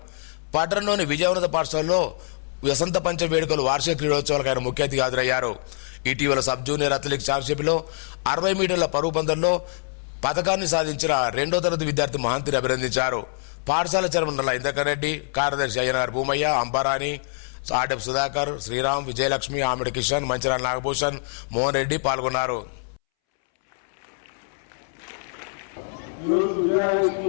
పట్టణంలోని విజయవంత పాఠశాలలో వసంత పంచమి వేడుకలు వార్షిక క్రీడోత్సవాలకు ఆయన ముఖ్య అతిథిగా హాజరయ్యారు. ఇటీవల సబ్ జూనియర్ అథ్లెటిక్స్ ఛాంపియన్షిప్లో 60 మీటర్ల పరుగు పందెంలో పథకాన్ని సాధించిన 2వ తరగతి విద్యార్థి మహంతిని అభినందించారు. పాఠశాల చైర్మన్ నల్ల ఇంద్రకర్ రెడ్డి, కార్యదర్శి అయ్యనార్ భూమయ్య, అంబారాణి, ఆర్డెఫ్ సుధాకర్, శ్రీరామ్, విజయలక్ష్మి, ఆమిడి కిషన్, మంచిరాల నాగభూషణ్, మోహన్ రెడ్డి పాల్గొన్నారు.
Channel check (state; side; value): silent; right; 62 dB below the other